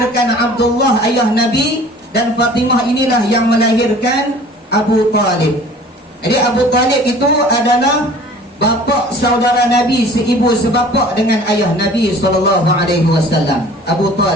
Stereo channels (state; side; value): normal; both; correlation 0.48